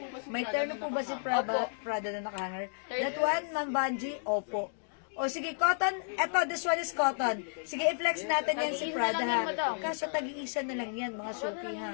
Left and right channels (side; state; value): right; silent; digital silence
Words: May terno po ba si Prada na nakahanger? That one, Ma'am Banji? Opo. O sige, cotton. Eto, this one is cotton. Sige, i-flex natin yan si Prada ha. Kaso tag-iisa na lang yan, mga suki